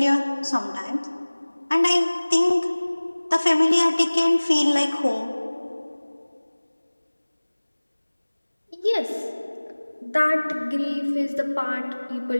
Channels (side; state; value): both; inverted; correlation -1.00